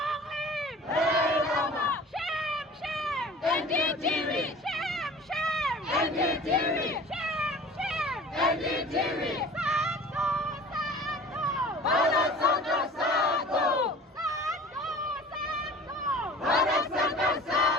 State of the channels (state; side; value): normal; both; correlation 0.43